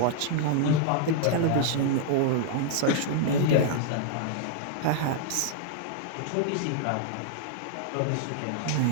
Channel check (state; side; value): different; both; correlation 0.00